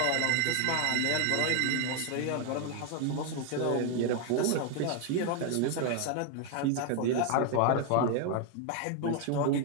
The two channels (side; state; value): both; different; correlation 0.01